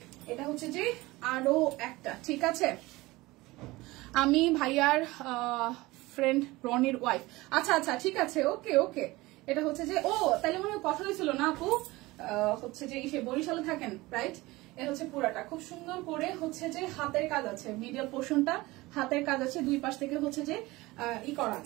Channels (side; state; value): left; quieter; 20.5 dB